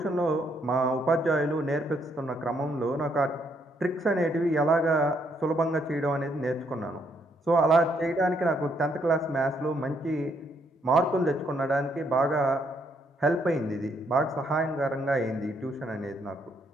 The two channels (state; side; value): normal; both; correlation 0.72